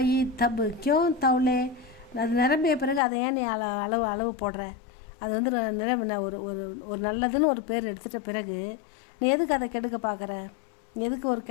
தப்பு கியோ தவுளே, அது நிரம்பிய பிறகு அதை ஏன் நீ அளவு போடுற? அது வந்து ஒரு நல்லதுன்னு ஒரு பேர் எடுத்துட்ட பிறகு நீ எதுக்கு அதை கெடுக்க பார்க்குற? எதுக்கு ஒரு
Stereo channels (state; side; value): drops out; right; at 3.0 s